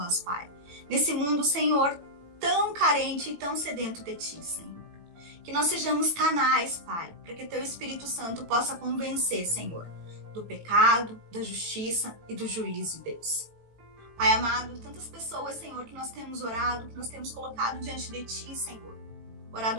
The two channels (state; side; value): late; left; 18 ms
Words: Pai. Nesse mundo, Senhor, tão carente e tão sedento de Ti, Senhor. Que nós sejamos canais, Pai, para que Teu Espírito Santo possa convencer, Senhor, do pecado, da justiça e do juízo, Deus. Pai amado, tantas pessoas, Senhor, que nós temos orado, que nós temos colocado diante de Ti, Senhor.